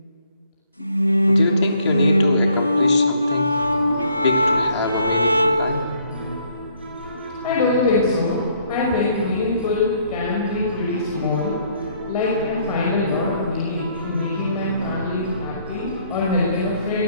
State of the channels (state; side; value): inverted; both; correlation -0.66